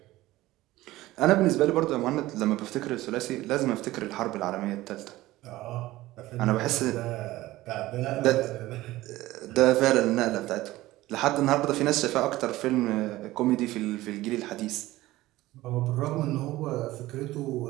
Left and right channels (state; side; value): quieter; left; 17.2 dB